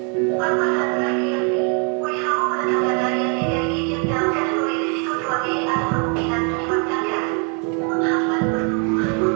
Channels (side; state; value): left; quieter; 37.7 dB